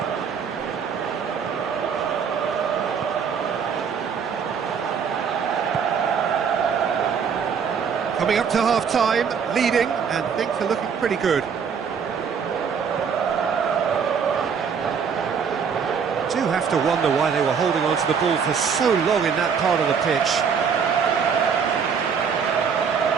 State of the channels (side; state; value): left; quieter; 6.6 dB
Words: Coming up to half-time, leading, and things are looking pretty good. Do have to wonder why they were holding on to the ball for so long in that part of the pitch.